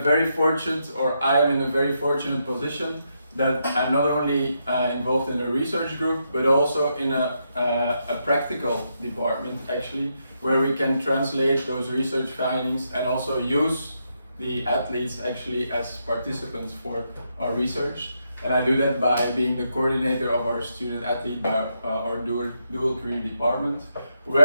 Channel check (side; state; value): both; inverted; correlation -0.81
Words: very fortunate, or I am in a very fortunate position that I'm not only involved in a research group, but also in a practical department actually, where we can translate those research findings and also use the athletes actually as participants for our research. And I do that by being the coordinator of our student athlete by our dual career department,